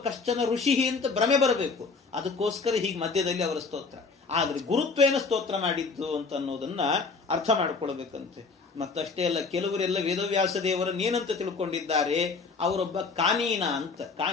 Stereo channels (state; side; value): quieter; right; 4.5 dB